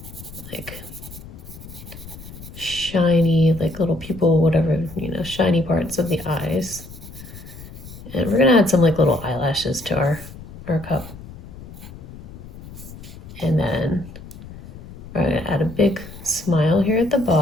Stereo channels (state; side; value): noise; left; rumble, 15 dB below the sound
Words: like shiny, like little pupil, whatever, shiny parts of the eyes. And we're gonna add some like little eyelashes to our cup. And then we're gonna add a big smile here at the